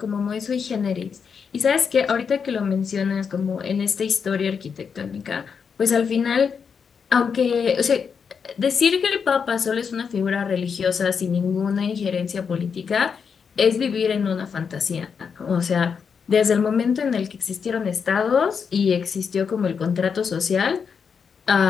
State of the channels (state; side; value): quieter; right; 6.3 dB